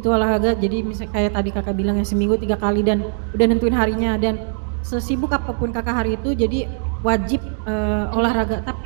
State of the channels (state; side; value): silent; left; digital silence